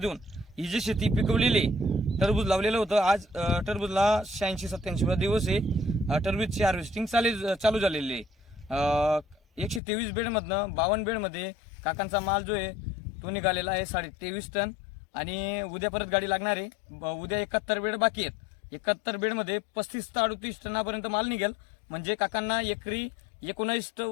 ही जी शेती पिकवलेली, टरबूज लावलेलं होतं। आज टरबूजला 86-87 दिवस आहे, टरबूजची हार्वेस्टिंग चालू झालेली आहे। 123 बेडमधनं 52 बेडमध्ये काकांचा माल जो आहे तो निघालेला आहे 23.5 टन। आणि उद्या परत गाडी लागणार आहे। उद्या 71 बेड बाकी आहेत। 71 बेडमध्ये 35 ते 38 टनापर्यंत माल निघेल, म्हणजे काकांना एकरी 19 ते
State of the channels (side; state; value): right; drops out; at 9.8 s